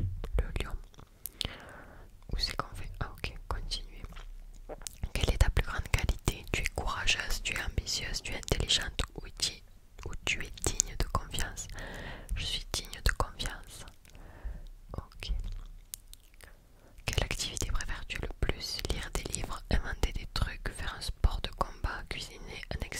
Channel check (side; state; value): both; identical; correlation 1.00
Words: lion. Où c'est qu'on fait? Ah ok, continuez. Quelle est ta plus grande qualité? Tu es courageuse, tu es ambitieuse, tu es intelligente ou tu es digne de confiance? Je suis digne de confiance. Ok. Quelle activité préfères-tu le plus? Lire des livres, inventer des trucs, faire un sport de combat, cuisiner un